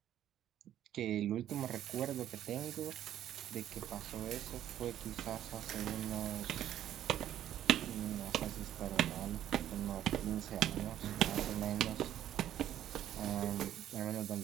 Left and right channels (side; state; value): left; quieter; 11.5 dB